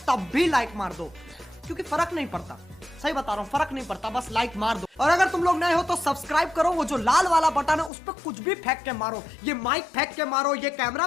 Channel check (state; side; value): drops out; right; at 7.9 s